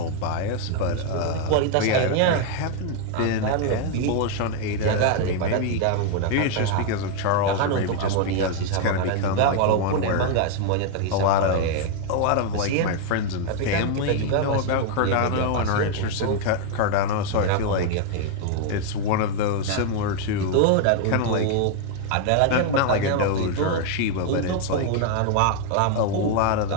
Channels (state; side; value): different; both; correlation 0.00